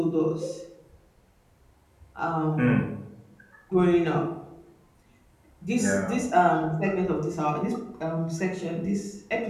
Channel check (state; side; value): identical; both; correlation 1.00